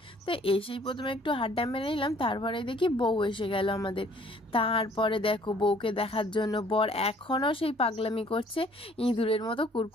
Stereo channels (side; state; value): both; normal; correlation 0.58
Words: তো এসেই প্রথমে একটু হাড্ডা মেরে নিলাম, তারপরে দেখি বউ এসে গেল আমাদের। তারপরে দেখো বউকে দেখার জন্য বর এখনও সেই পাগলামি করছে, ইঁদুরের মতো